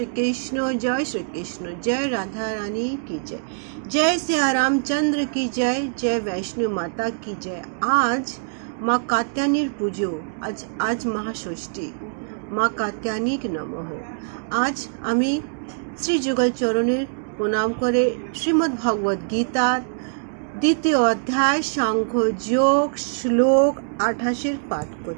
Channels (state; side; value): silent; left; digital silence